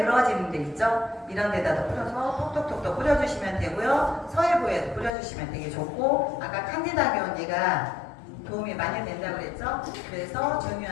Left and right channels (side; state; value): right; drops out; at 5.1 s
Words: 데 있죠? 이런 데다도 뿌려서 톡톡톡 뿌려주시면 되고요. 서해부에도 뿌려주시면 되게 좋고, 아까 칸디다균 얘가 도움이 많이 된다고 그랬죠? 그래서